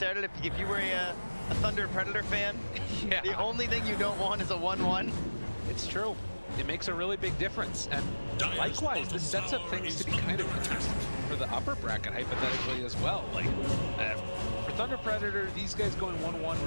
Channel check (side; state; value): both; inverted; correlation -1.00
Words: If you were a Thunder Predator fan, Yeah. the only thing you don't want is a 1-1. It's true. It makes a really big difference. And likewise, this sets up things to be kind of interesting for the upper bracket, hypothetically, as well. Like, for Thunder Predator, these guys going 1-1